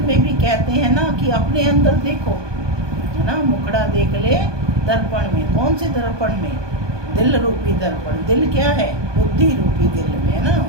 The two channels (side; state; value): left; late; 1.2 ms